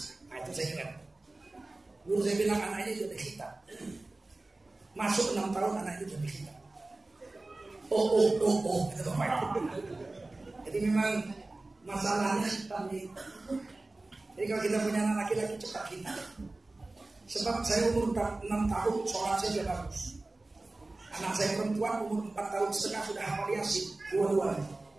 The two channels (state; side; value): quieter; left; 3.1 dB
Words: Nah itu saya ingat. Guru saya bilang anak ini sudah kita. Masuk 6 tahun anak itu sudah kita. Kata bapak itu. Jadi memang masalahnya hitam nih. Jadi kalau kita punya anak laki-laki cepat kita. Sebab saya umur 6 tahun sholat saya sudah bagus. Anak saya perempuan umur 4 tahun setengah sudah hafal Yasin, dua-duanya.